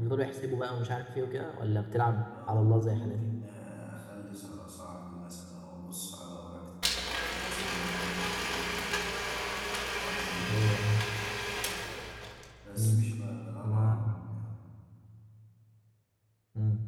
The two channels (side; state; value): both; identical; correlation 1.00